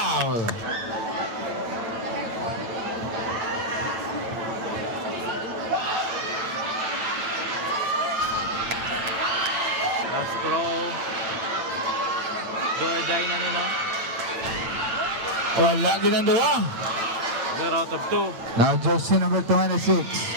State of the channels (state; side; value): late; left; 9.0 ms